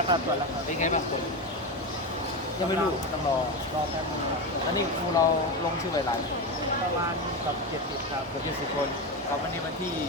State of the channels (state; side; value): normal; both; correlation 0.16